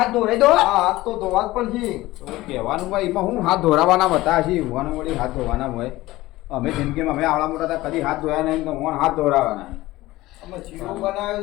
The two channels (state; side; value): quieter; right; 17.9 dB